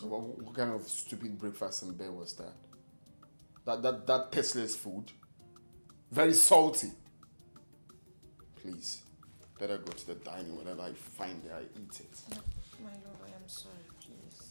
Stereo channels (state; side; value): inverted; both; correlation -1.00